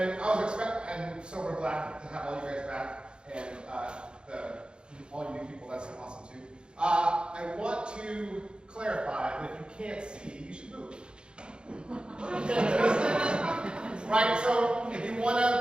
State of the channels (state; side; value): late; left; 0.052 ms